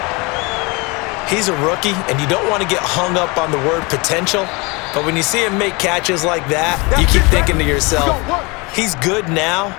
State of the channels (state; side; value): quieter; right; 27.1 dB